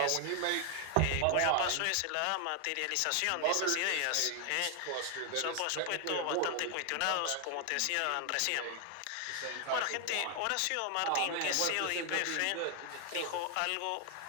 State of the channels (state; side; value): different; both; correlation 0.00